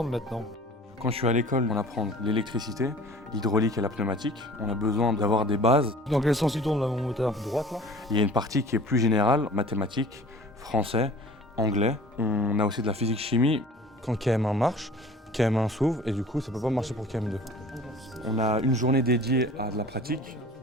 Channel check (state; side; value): normal; both; correlation 0.46